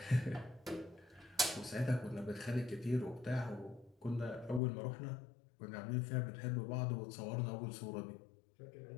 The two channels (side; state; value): right; drops out; at 4.6 s